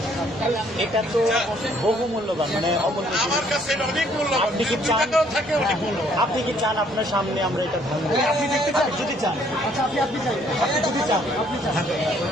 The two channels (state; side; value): noise; right; rumble, 25 dB below the sound